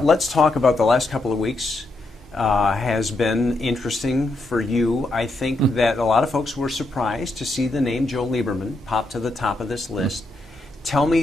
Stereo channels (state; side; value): normal; both; correlation 0.82